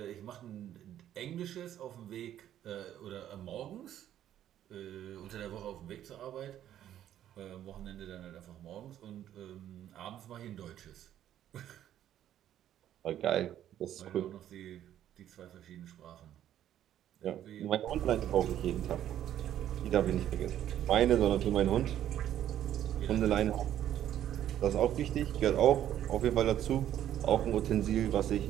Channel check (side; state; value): left; quieter; 11.3 dB